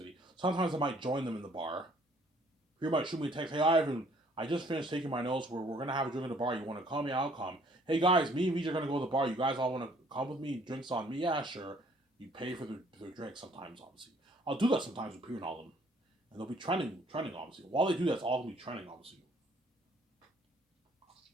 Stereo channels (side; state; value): both; normal; correlation 0.60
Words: Sometimes I might join them in the bar. Peter might shoot me a text. Hey, Ivan, I just finished taking my notes. We're going to have a drink at the bar. You want to come? Yeah, I'll come. Hey, guys, me and Vijay are going to go to the bar. You guys all want to come with me? Drinks on me? Yeah, sure. You pay for their drinks sometimes, obviously. I'll do that sometimes with Peter and all of them. And they'll be trending, obviously. While they do that, it's all going to be trending, obviously.